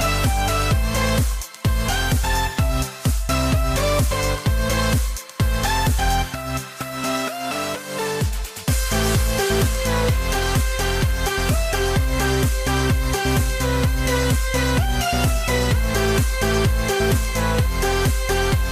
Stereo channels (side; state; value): both; identical; correlation 1.00